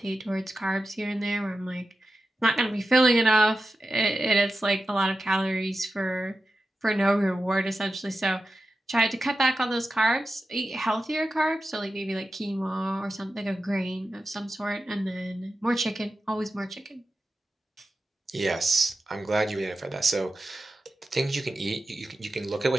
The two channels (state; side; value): normal; both; correlation 0.92